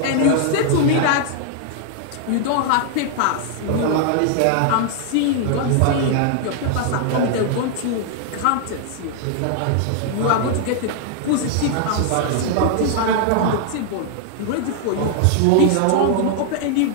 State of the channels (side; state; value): both; different; correlation 0.00